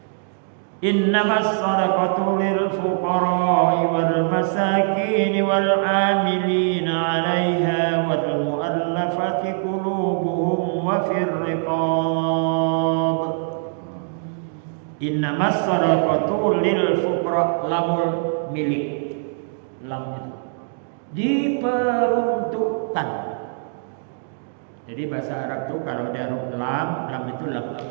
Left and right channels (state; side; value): silent; left; digital silence